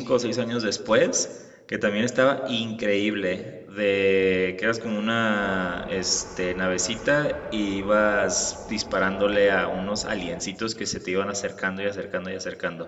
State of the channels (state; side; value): identical; both; correlation 1.00